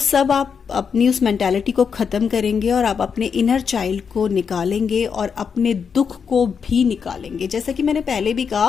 आप अपनी उस मेंटालिटी को ख़त्म करेंगे और आप अपने इनर चाइल्ड को निकालेंगे और अपने दुख को भी निकालेंगे। जैसा कि मैंने पहले भी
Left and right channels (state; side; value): quieter; right; 6.4 dB